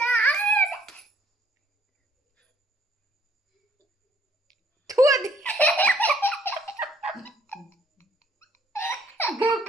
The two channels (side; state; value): both; normal; correlation 0.65